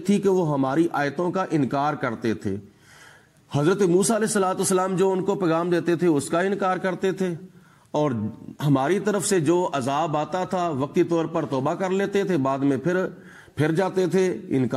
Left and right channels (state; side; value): identical; both; correlation 1.00